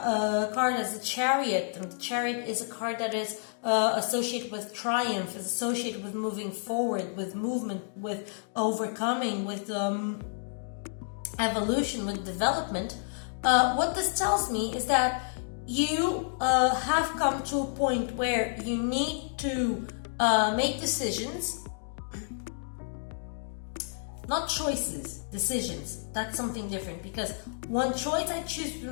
as the Chariot, and the Chariot is a card that is associated with triumph, is associated with moving forward, with movement, with overcoming, with evolution, with development, what this tells me is that you have come to a point where you need to make decisions. Not choices, decisions. That's something different, because one choice I choose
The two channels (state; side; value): silent; right; digital silence